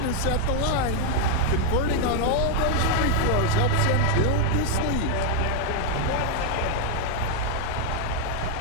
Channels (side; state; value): both; different; correlation 0.01